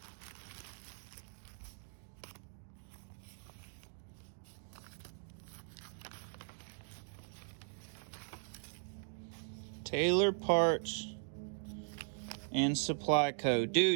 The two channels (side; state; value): left; silent; digital silence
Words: Taylor Parts and Supply Co.